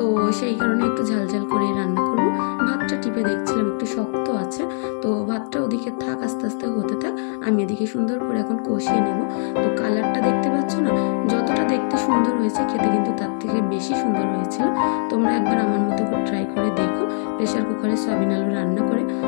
সেই কারণে একটু ঝাল ঝাল করে রান্না করব। ভাতটা টিপে দেখছিলাম একটু শক্ত আছে, তো ভাতটা ওদিকে থাক, আস্তে আস্তে হতে থাক, আমি এদিকে সুন্দর করে এখন কষিয়ে নেব। তো কালারটা দেখতে পাচ্ছ না, যতটা দেখতে সুন্দর হয়েছে খেতে কিন্তু তার থেকে বেশি সুন্দর হয়েছিল। তোমরা একবার আমার মতো করে ট্রাই করে দেখো, প্রেশার কুকারে সয়াবিন আলু রান্না করে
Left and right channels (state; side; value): silent; right; digital silence